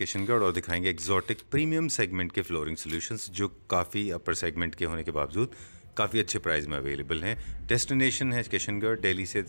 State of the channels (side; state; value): both; inverted; correlation -1.00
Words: और दिखाएंगे एग्जॉटिक प्रीमियम सेगमेंट के फ्लोरिंग सॉल्यूशंस जो काफ़ी अपर सेगमेंट के होने के बावजूद काफ़ी अच्छे प्राइस में अवेलेबल हैं। डेस्टिनेशन है किशनगढ़, दिल्ली से